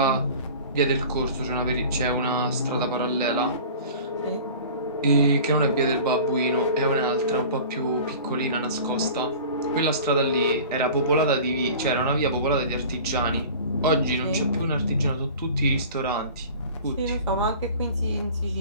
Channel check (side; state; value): both; inverted; correlation -0.41